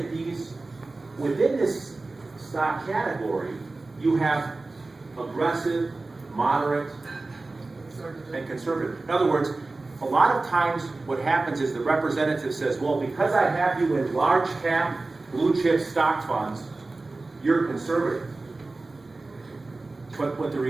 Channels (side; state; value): left; quieter; 3.3 dB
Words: these, within this stock category, you have aggressive, moderate, and conservative. In other words, a lot of times what happens is the representative says, well, because I have you in large cap, blue chip stock funds, you're conservative. But what the